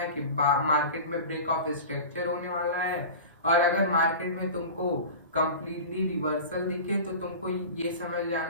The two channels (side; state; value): both; inverted; correlation -0.33